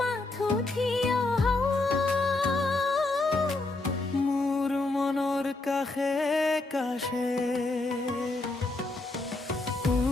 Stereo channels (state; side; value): quieter; right; 3.1 dB